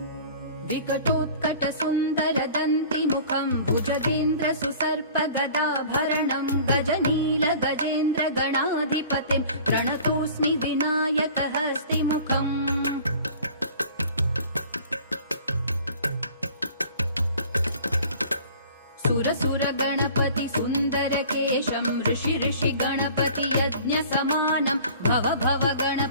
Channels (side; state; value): both; inverted; correlation -0.46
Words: विकटोत्कटसुन्दरदन्तिमुखं भुजगेन्द्रसुसर्पगदाभरणं गजनीलगजेन्द्रगणाधिपतिं प्रणतोऽस्मि विनायकहस्तिमुखम्। सुरसुरगणपति सुन्दरकेशं ऋषि गणपति यज्ञसमानं भव भव